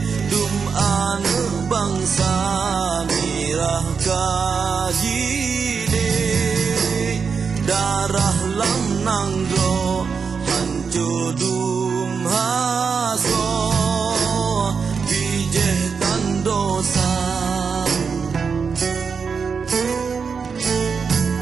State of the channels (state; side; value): quieter; left; 5.7 dB